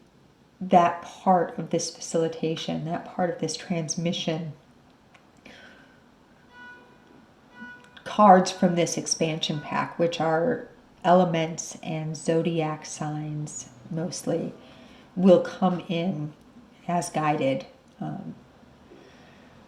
part of this facilitation, that part of this transmission, cards from this expansion pack, which are elements and zodiac signs mostly, will come in as guided.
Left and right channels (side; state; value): both; identical; correlation 1.00